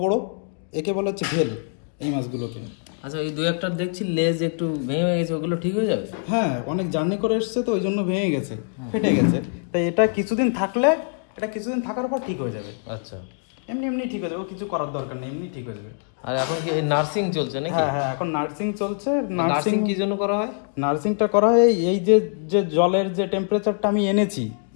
বড়, একে বলা হচ্ছে ভেল এই মাছগুলোকে। আচ্ছা, এই দুই একটা দেখছি লেজ একটু ভেঙে গেছে, ওগুলো ঠিক হয়ে যাবে? হ্যাঁ, অনেক জার্নি করে এসছে তো ওই জন্য ভেঙে গেছে, ফেটে গেছে। তাই এটা কিছুদিন থাকলে, এটা কিছুদিন থাকার পর ঠিক হয়ে যাবে। আচ্ছা, এমনি এমনি ঠিক হয়ে যাবে, কিছু করার দরকার নেই, এমনি ঠিক হয়ে যাবে। আর এখন কি নার্সিং চলছে নাকি? হ্যাঁ হ্যাঁ, এখন নার্সিং চলছে। নার্সিং কি জন্য করা হয়? নার্সিংটা করা হয় এই যে যে জলের যে টেম্পারেচারটা আমি এনেছি,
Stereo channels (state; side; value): silent; right; digital silence